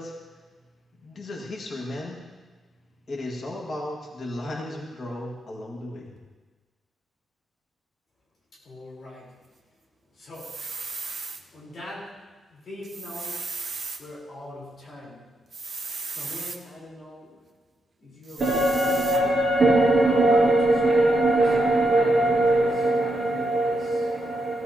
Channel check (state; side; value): normal; both; correlation 0.82